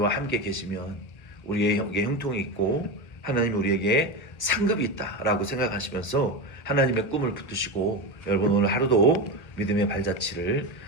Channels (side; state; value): right; late; 1.0 ms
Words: 함께 계시면 우리에게 형통이 있고 하나님이 우리에게 상급이 있다라고 생각하시면서 하나님의 꿈을 붙드시고 여러분 오늘 하루도 믿음의 발자취를